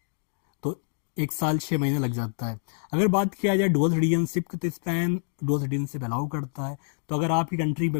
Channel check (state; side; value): silent; right; 58 dB below the other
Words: तो 1 साल 6 महीने लग जाता है। अगर बात किया जाए डुअल सिटीजनशिप की, तो स्पेन डुअल सिटीजनशिप अलाउ करता है। तो अगर आपकी कंट्री में